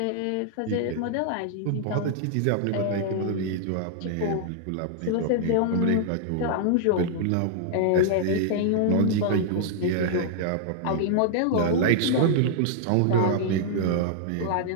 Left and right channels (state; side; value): different; both; correlation -0.01